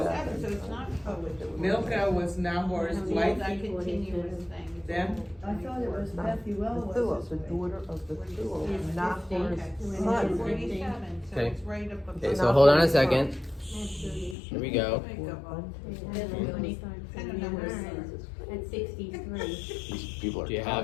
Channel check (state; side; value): drops out; right; at 14.4 s